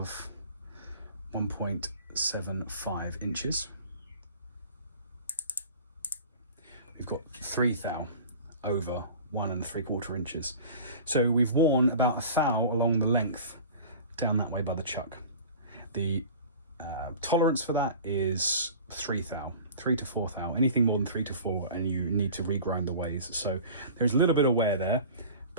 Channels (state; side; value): inverted; both; correlation -0.40